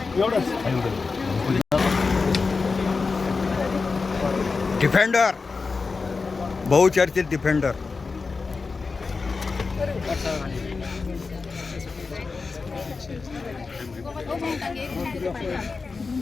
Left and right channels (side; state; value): right; quieter; 4.4 dB